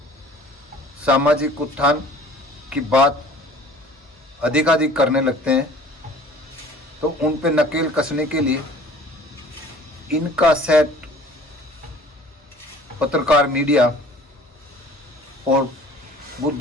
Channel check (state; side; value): normal; both; correlation 0.49